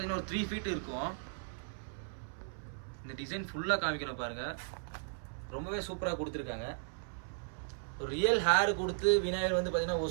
ஒரு 3 feet இருக்கும். இந்த டிசைன் ஃபுல்லாக காமிக்கணும் பாருங்கள், ரொம்பவே சூப்பராக கொடுத்துருக்காங்க. ஒரு ரியல் ஹேர் கொடுத்து விநாயகர் வந்து பார்த்தீங்கன்னா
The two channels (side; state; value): left; silent; 54 dB below the other